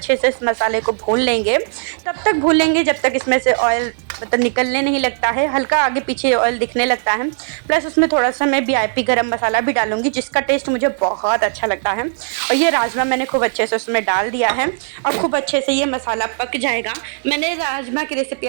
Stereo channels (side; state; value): left; silent; 67 dB below the other